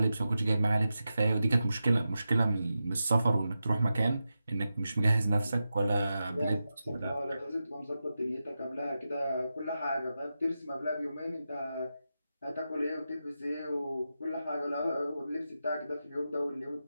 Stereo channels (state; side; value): inverted; both; correlation -0.90